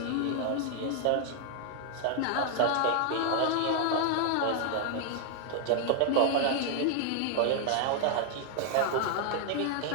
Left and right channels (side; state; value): both; different; correlation 0.00